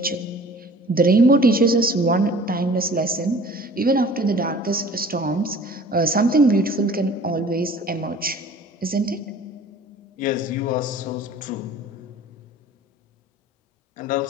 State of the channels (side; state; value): both; normal; correlation 0.47